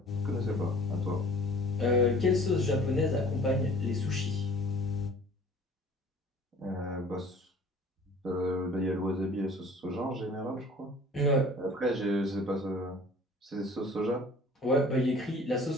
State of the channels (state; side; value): normal; both; correlation 0.49